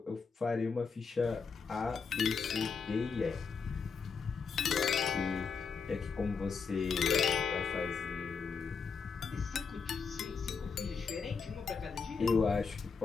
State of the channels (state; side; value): quieter; right; 5.4 dB